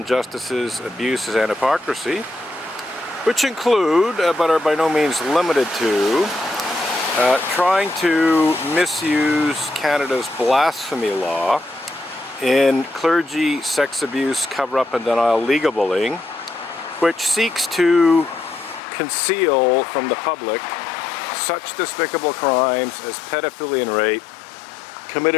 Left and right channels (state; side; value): drops out; right; at 18.8 s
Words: abuses, and hypocrisy, which include, but are by no means limited to, trying to misuse Canada's blasphemy law in clergy, sex abuse, cover-up and denial legal bullying, which seeks to conceal from the public such despicable crimes as pedophilia and rape